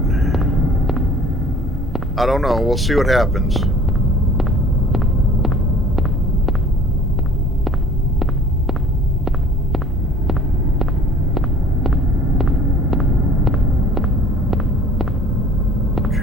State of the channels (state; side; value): normal; both; correlation 0.50